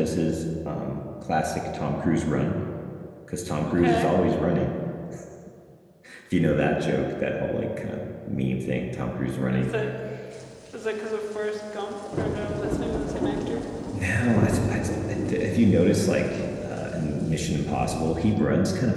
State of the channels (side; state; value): both; identical; correlation 1.00